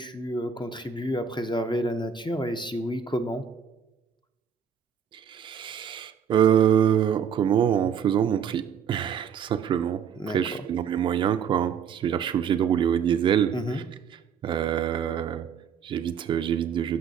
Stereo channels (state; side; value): quieter; left; 7.4 dB